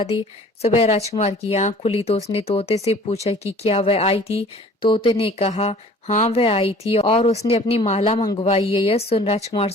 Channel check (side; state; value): both; normal; correlation 0.49